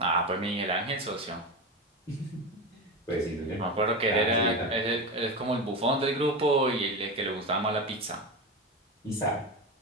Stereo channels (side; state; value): both; normal; correlation 0.21